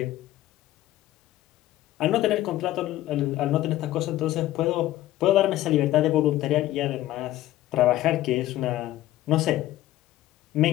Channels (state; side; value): quieter; right; 14.9 dB